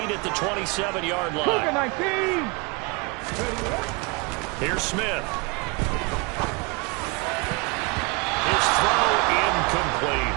8 at the 27-yard line. Here's Smith. His throw incomplete.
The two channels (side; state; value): left; quieter; 28.9 dB